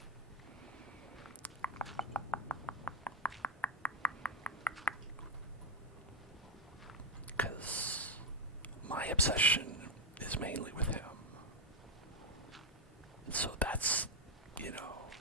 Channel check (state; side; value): normal; both; correlation 0.01